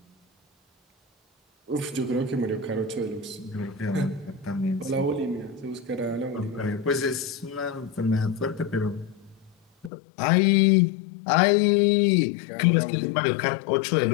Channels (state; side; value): drops out; right; at 9.9 s